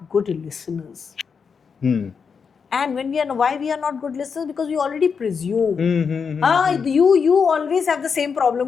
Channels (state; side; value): quieter; right; 6.0 dB